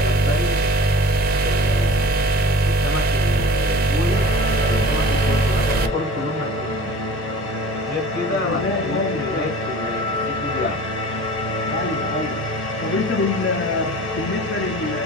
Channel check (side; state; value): both; normal; correlation 0.41